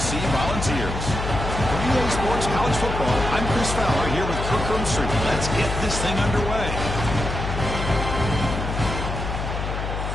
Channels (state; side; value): noise; left; hum, 4 dB below the sound